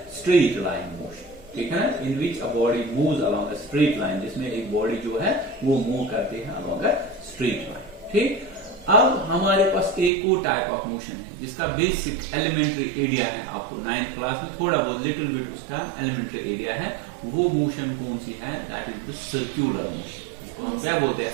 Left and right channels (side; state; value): left; drops out; at 10.1 s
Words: straight line motion, ठीक है, in which a body moves along a straight line, जिसमें एक body जो है वो मूव करती है along a straight line, ठीक। अब हमारे पास एक और टाइप ऑफ मोशन है जिसका बेसिक एलिमेंट्री एरिया है, आपको 9th क्लास में थोड़ा बहुत लिटिल बिट उसका एलिमेंट्री एरिया है। वो मोशन कौन सी है, that is the circular motion. हम क्या बोलते हैं,